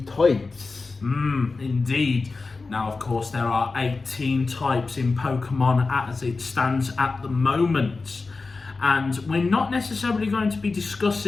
Indeed. Now, of course, there are 18 types in Pokemon as it stands at the moment. And we're not necessarily going to be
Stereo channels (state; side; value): quieter; right; 3.9 dB